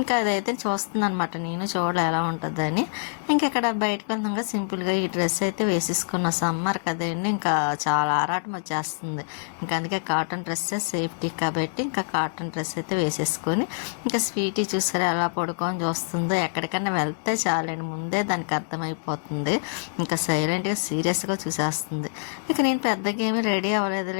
ఇంకా అదైతే చూస్తుంది అనమాట, నేను చూడాలి ఎలా ఉంటుందని. ఇంకా ఇక్కడ బయటకు వెళ్తాక సింపుల్గా ఈ డ్రెస్ అయితే వేసేసుకున్న. సమ్మర్ కదండి, ఇంకా చాలా ఆరాటం వచ్చేస్తుంది. ఇంకా అందుకే కాటన్ డ్రెస్సే సేఫ్టీ కాబట్టి ఇంకా కాటన్ డ్రెస్ అయితే వేసేసుకొని, ఇంకా స్వీటీ చూసారా ఎలా పడుకొని చూస్తుందో. ఎక్కడికన్నా వెళ్తే చాలండి, ముందే దానికి అర్థమైపోతుంది. ఇంకా సైలెంట్గా సీరియస్గా చూసేస్తుంది. ఇక నేను పెద్దగా ఏమీ రెడీ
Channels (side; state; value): right; silent; digital silence